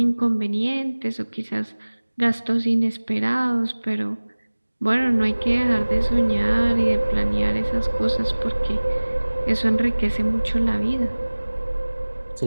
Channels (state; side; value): inverted; both; correlation -1.00